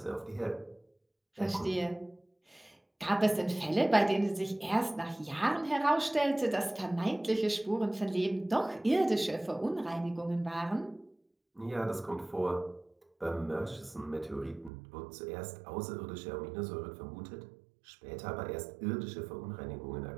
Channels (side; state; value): left; drops out; at 14.7 s